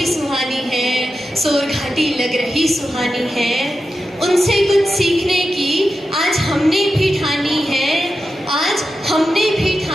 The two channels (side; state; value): both; normal; correlation 0.91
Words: सुहानी है, सोर घाटी लग रही सुहानी है। उनसे कुछ सीखने की आज हमने भी ठानी है, आज हमने भी